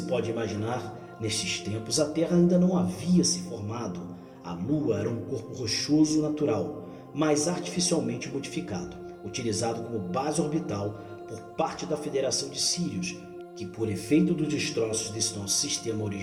pode imaginar, nestes tempos a Terra ainda não havia se formado. A Lua era um corpo rochoso natural, mas artificialmente modificado, utilizado como base orbital por parte da Federação de Sirius, que por efeito dos destroços desse nosso sistema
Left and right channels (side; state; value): both; identical; correlation 1.00